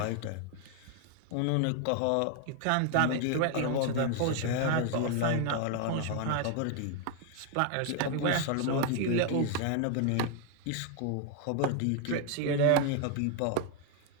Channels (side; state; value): both; different; correlation 0.01